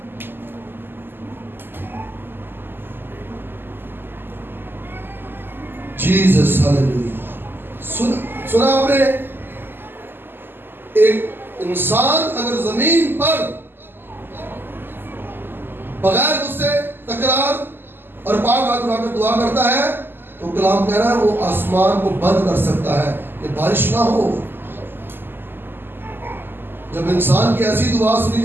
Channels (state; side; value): late; left; 0.098 ms